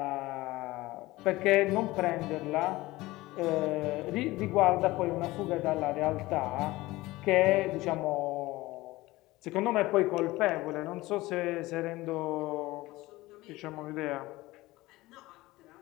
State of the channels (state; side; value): quieter; right; 19.2 dB